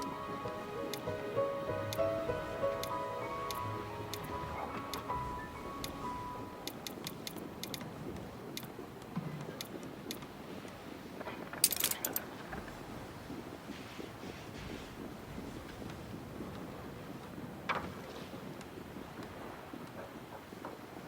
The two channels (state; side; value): identical; both; correlation 1.00